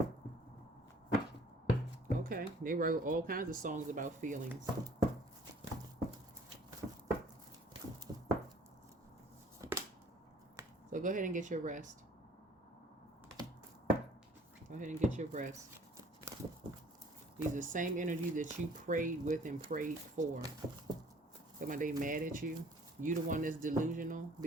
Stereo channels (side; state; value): both; normal; correlation 0.54